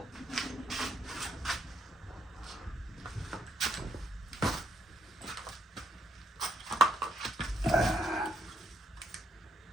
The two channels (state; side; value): normal; both; correlation 0.73